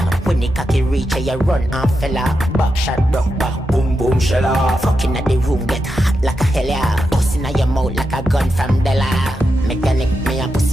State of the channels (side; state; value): both; normal; correlation 0.87